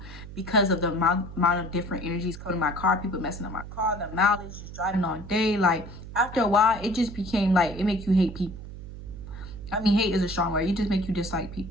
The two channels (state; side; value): noise; right; hum, 12 dB below the sound